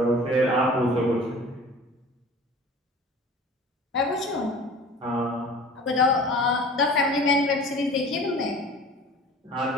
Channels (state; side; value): normal; both; correlation 0.42